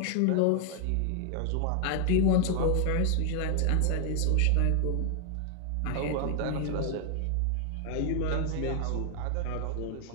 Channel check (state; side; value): different; both; correlation 0.00